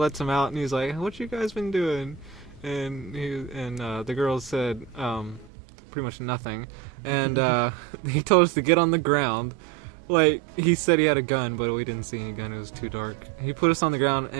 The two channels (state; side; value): drops out; left; at 5.5 s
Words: them out, and he's like, what you guys been doing? And the girls said pretty much nothing. And he told us to get on the ground. Like, he said he had a gun, but we didn't see any gun. It was too dark. He put us on the ground,